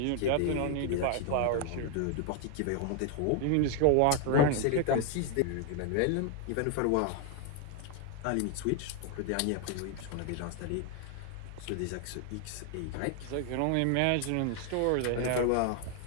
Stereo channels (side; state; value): both; different; correlation 0.00